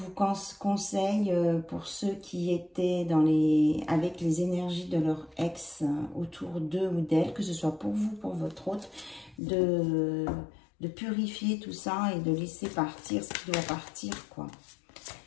conseille pour ceux qui étaient avec les énergies de leur ex autour d'eux ou d'elle, que ce soit pour vous, pour votre autre, de purifier tout ça et de laisser partir ce qui doit partir, quoi.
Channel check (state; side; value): drops out; right; at 9.4 s